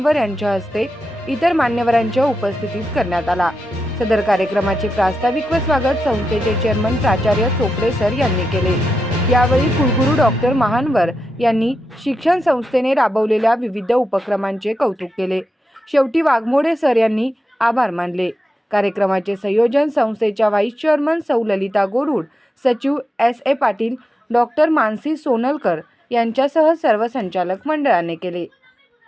यांच्या हस्ते इतर मान्यवरांच्या उपस्थितीत करण्यात आला. सदर कार्यक्रमाचे प्रास्ताविक व स्वागत संस्थेचे चेअरमन प्राचार्य चोपडे सर यांनी केले. यावेळी कुलगुरू डॉक्टर महानवर यांनी शिक्षण संस्थेने राबवलेल्या विविध उपक्रमांचे कौतुक केले. शेवटी वाघमोडे सर यांनी आभार मानले. कार्यक्रमाचे संयोजन संस्थेच्या व्हाईस चेअरमन सौ ललिता गोरुड, सचिव S.A. पाटील, डॉक्टर मानसी सोनलकर यांच्यासह सर्व संचालक मंडळाने केले.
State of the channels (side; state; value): both; normal; correlation 0.89